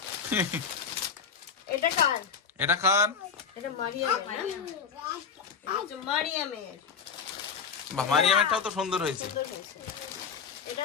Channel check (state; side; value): quieter; right; 6.3 dB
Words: এটা কার? এটা কার? এটা মারিয়ামের না? এটা হচ্ছে মারিয়ামের। বাহ, মারিয়ামেরটাও তো সুন্দর হয়েছে। সুন্দর হয়েছে। এটা